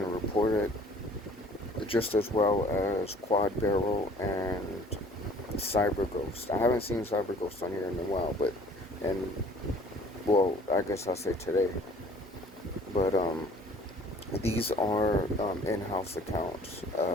reported just as well as QuadBarrel and CyberGhost. I haven't seen CyberGhost on here in a while, and well, I guess I'll say today. But these are in-house accounts.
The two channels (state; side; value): normal; both; correlation 0.53